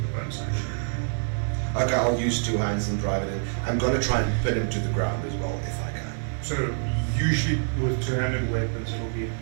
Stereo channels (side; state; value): left; silent; digital silence